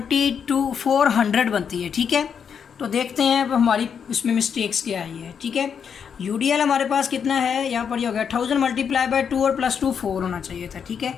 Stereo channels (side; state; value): right; quieter; 7.2 dB